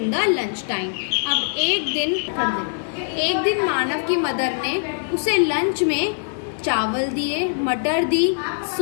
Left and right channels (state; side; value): silent; right; 64 dB below the other